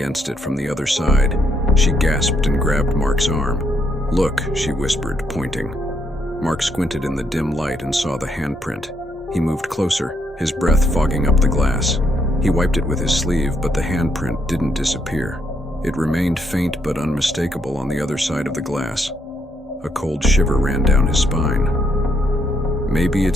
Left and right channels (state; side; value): normal; both; correlation 0.75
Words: it from the other side. She gasped and grabbed Mark's arm. "Look," she whispered, pointing. Mark squinted in the dim light and saw the handprint. He moved closer, his breath fogging up the glass. He wiped it with his sleeve, but the handprint didn't disappear. It remained faint but unmistakable on the other side of the glass. A cold shiver ran down his spine. "Maybe